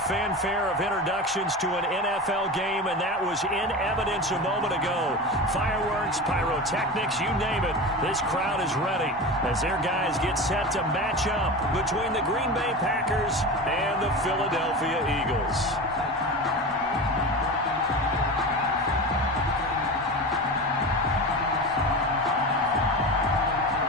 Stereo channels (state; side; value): normal; both; correlation 0.28